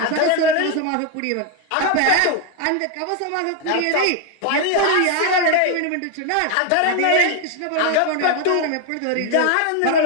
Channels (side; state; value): both; different; correlation 0.01